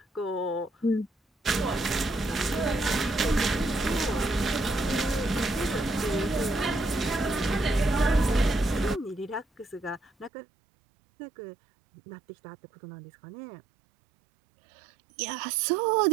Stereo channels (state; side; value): drops out; left; at 10.3 s